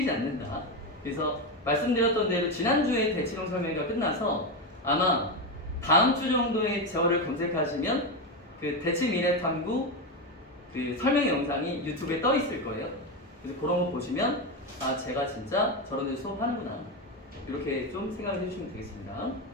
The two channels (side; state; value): both; normal; correlation 0.12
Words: 않는다. 그래서 말씀드렸던 대로 지난주에 대치동 설명회가 끝나서 아마 다음 주 정도에 저를 검색하시면 그 대치 미래 탐구 그 설명 영상이 유튜브에 떠 있을 거예요. 그래서 그런 거 보시면 아 제가 진짜 저런 데 수업하는구나 이렇게 좀 생각을 해주시면 되겠습니다.